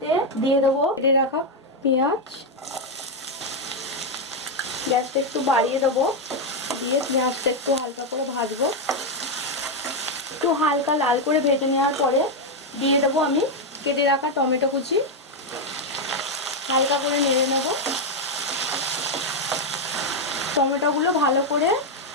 দিয়ে দেবো কেটে রাখা পেঁয়াজ। গ্যাসটা একটু বাড়িয়ে দেবো, দিয়ে পেঁয়াজটা একটু হালকা করে ভাজবো। একটু হালকা লাল করে ভেজে নেওয়ার পরে দিয়ে দেবো আমি কেটে রাখা টমেটো কুচি। হালকা করে নেড়ে নেব। টমেটোগুলো ভালো করে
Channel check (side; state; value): both; normal; correlation 0.03